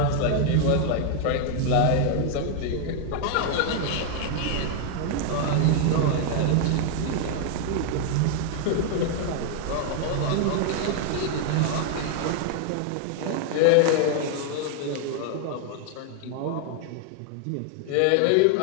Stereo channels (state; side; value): different; both; correlation 0.00